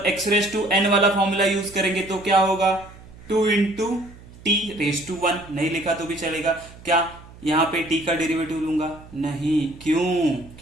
x रेस टू n वाला फॉर्मूला यूज करेंगे तो क्या होगा? 2 इंटू टी रेस टू 1। नहीं लिखा तो भी चलेगा। क्या यहाँ पे t का डेरिवेटिव लूंगा? नहीं। क्यों?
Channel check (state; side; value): noise; right; hum, 20 dB below the sound